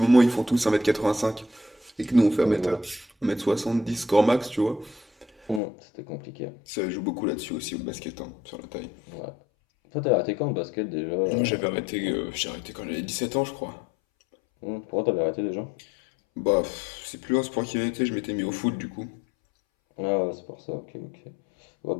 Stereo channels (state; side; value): drops out; right; at 5.6 s